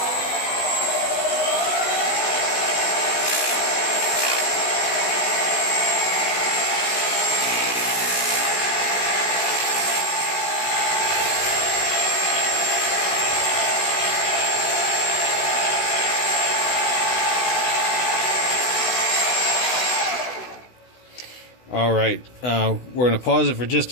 All right, we're going to pause it for just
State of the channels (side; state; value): right; late; 16 ms